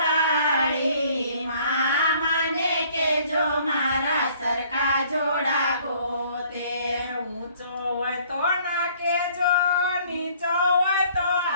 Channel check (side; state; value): both; inverted; correlation -0.58